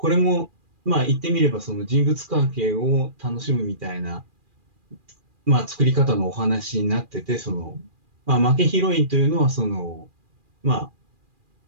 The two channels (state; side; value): late; left; 2.4 ms